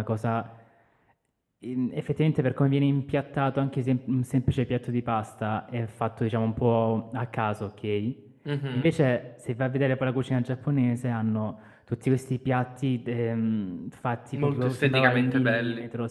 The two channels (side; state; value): both; identical; correlation 1.00